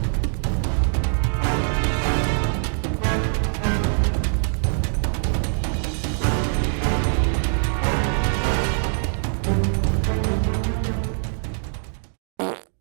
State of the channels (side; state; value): left; silent; digital silence